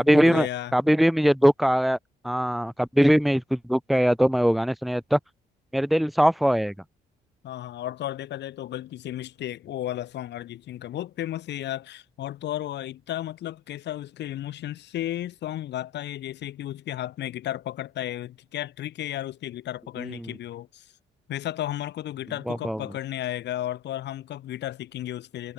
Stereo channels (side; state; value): both; normal; correlation 0.87